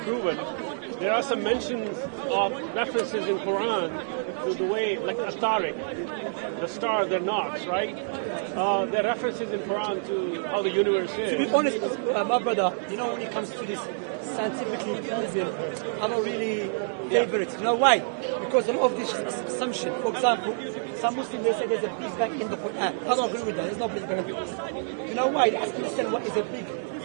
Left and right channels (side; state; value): left; silent; 60 dB below the other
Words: There are some mentions of references in Quran to the way, like Tariq, the star, they're knocks, right? There are references in Quran to how the universe is. To be honest, my brother, you know, when it comes to this scientifically proven, I don't really favor it. You know why? Because a lot of this assumption. For example, some Muslims, they say there's a Big Bang in the Quran. I don't agree with that. There's no Big Bang. You know why? They have to understand what is a Big